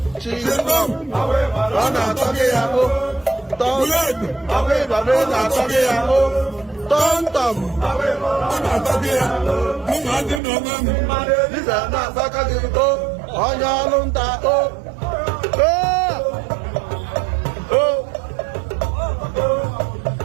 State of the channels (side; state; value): left; drops out; at 10.4 s